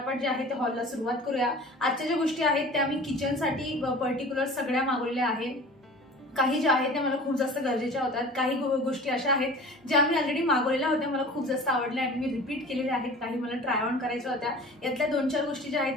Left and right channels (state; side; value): normal; both; correlation 0.41